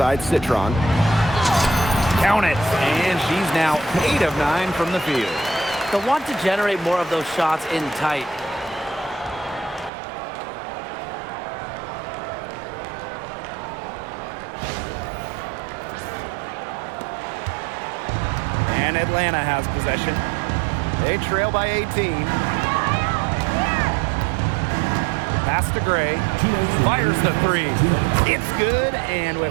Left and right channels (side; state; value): left; drops out; at 9.9 s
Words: Citron. Count it. And she's now 8 of 9 from the field. They'll want to generate more of those shots in tight. And Atlanta has possession. They trail by 18. Pass to Gray. Fires the 3. It's good, and